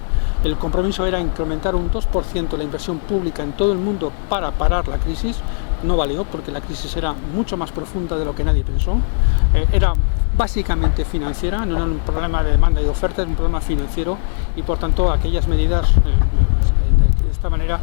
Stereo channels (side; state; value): right; silent; digital silence